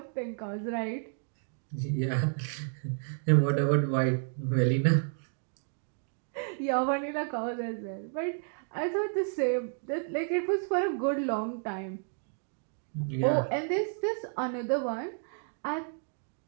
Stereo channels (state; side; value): silent; left; 57 dB below the other